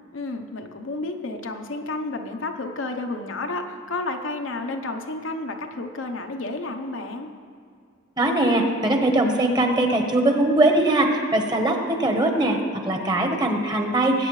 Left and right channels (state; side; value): normal; both; correlation 0.45